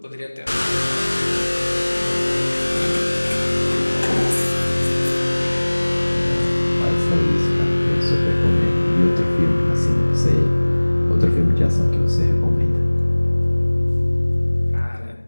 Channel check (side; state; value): both; inverted; correlation -1.00